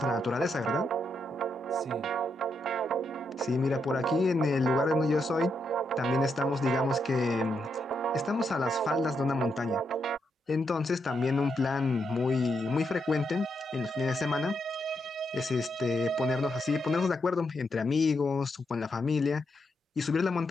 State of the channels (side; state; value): both; normal; correlation 0.81